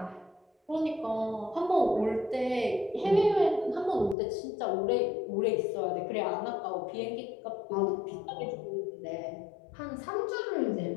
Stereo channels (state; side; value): drops out; right; at 4.2 s